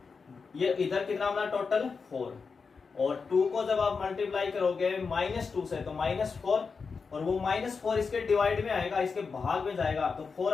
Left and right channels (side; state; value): right; quieter; 5.1 dB